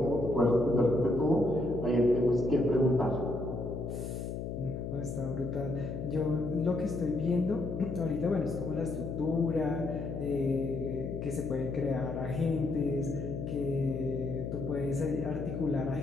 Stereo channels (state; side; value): noise; left; hum, 5 dB below the sound